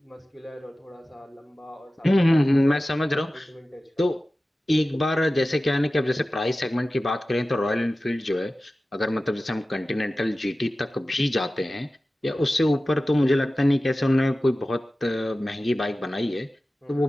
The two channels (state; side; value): normal; both; correlation 0.96